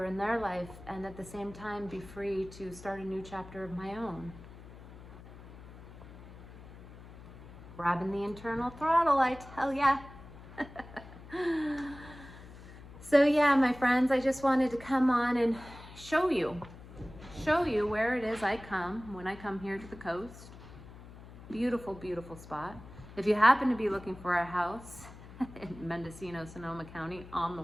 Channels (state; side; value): noise; left; hum, 17 dB below the sound